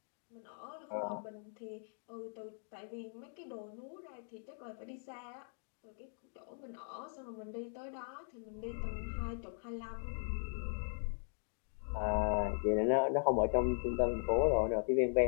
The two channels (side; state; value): right; silent; digital silence